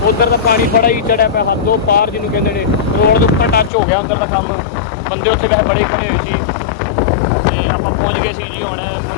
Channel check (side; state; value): right; drops out; at 3.7 s